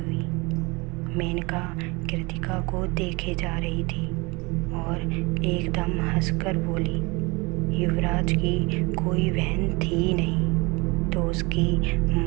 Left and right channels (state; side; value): quieter; left; 26.0 dB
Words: मेनका कृतिका को देखे जा रही थी और एकदम हंसकर बोली, युवराज की कोई बहन थी ही नहीं तो उसकी